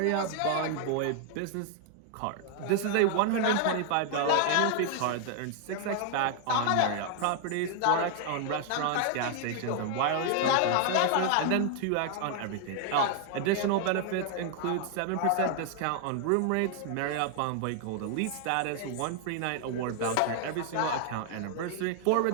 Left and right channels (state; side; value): different; both; correlation 0.00